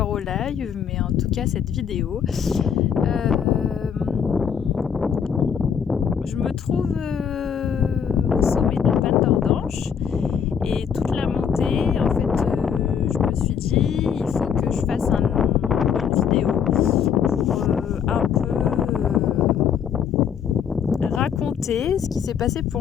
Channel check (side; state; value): right; quieter; 7.5 dB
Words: au live, mais en tout cas, cette vidéo. Je me trouve au sommet de la Panne d'Ordanche et toute la montée, en fait, je me suis dit, il faut que je fasse une vidéo pour un peu raconter ce qui s'est passé